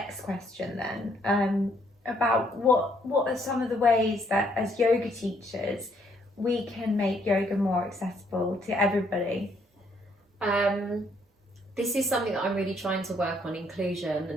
question then, about what are some of the ways that as yoga teachers we can make yoga more accessible to everybody? This is something that I'm really trying to work on, inclusion,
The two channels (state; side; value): normal; both; correlation 0.68